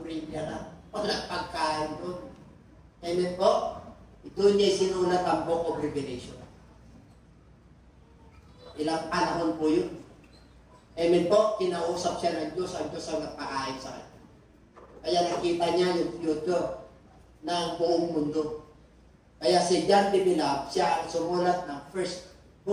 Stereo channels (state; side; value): identical; both; correlation 1.00